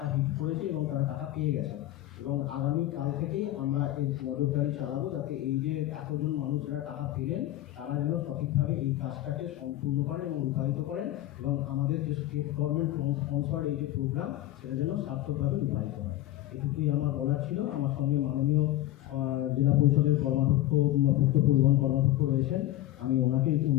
হিট করেছে এবং তারা টাকা পেয়ে গেছে এবং আগামীকাল থেকেই আমরা এই নজরদারি চালাবো যাতে এই যে এতজন মানুষ যারা টাকা পেলেন তারা যেন সঠিকভাবে এই কাজটাকে সম্পূর্ণ করেন এবং রূপায়িত করেন এবং আমাদের যে স্টেট গভর্নমেন্ট স্পন্সর্ড এই যে প্রোগ্রাম সেটা যেন সার্থকভাবে রূপায়িত হয়। এটুকুই আমার বলার ছিল। আমার সঙ্গে মাননীয় জেলা পরিষদের কর্মাধ্যক্ষ পূর্ত পরিবহন কর্মাধ্যক্ষ রয়েছেন, আমি ওনাকে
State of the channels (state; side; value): quieter; right; 14.9 dB